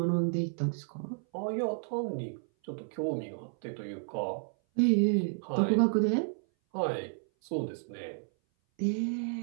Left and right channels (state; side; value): silent; left; 57 dB below the other